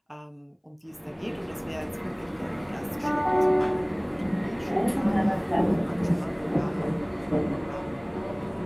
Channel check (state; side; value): identical; both; correlation 1.00